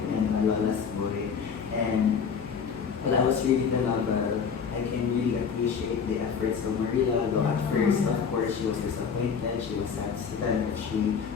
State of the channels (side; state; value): right; quieter; 6.4 dB